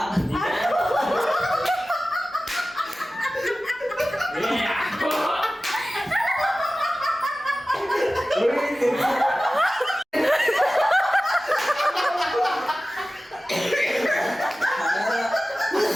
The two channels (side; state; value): both; normal; correlation 0.96